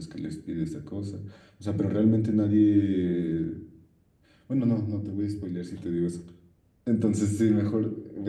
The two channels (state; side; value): identical; both; correlation 1.00